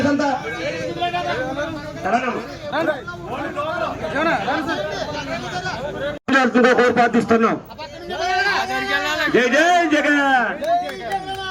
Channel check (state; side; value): identical; both; correlation 1.00